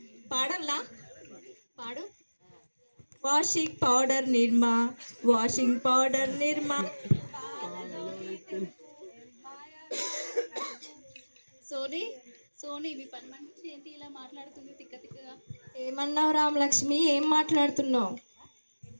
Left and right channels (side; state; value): both; inverted; correlation -1.00